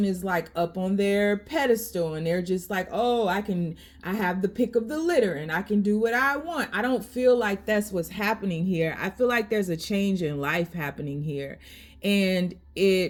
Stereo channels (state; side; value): identical; both; correlation 1.00